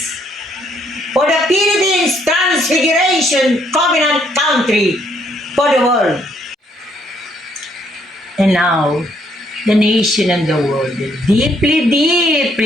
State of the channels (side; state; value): both; normal; correlation 0.69